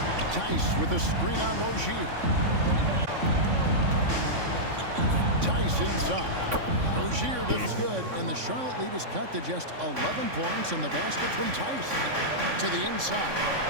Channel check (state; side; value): late; left; 3.6 ms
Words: Tice with a screen on Rozier. Tice inside. Rozier does good, and the Charlotte lead is cut to just 11 points, and the basket from Tice to the inside.